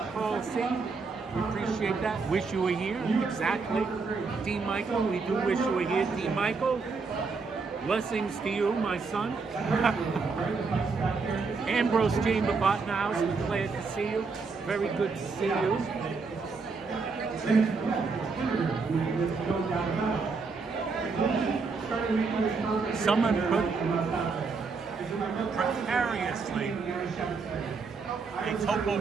Carl C. We appreciate that. Wish you were here. Exactly. D. Michael, we do wish you were here. D. Michael, blessings to you, my son. Ambrose Chamber Bottenhouse, we're glad to see you. Very good to see you. Someone put precariously a Topo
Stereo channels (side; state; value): left; quieter; 4.6 dB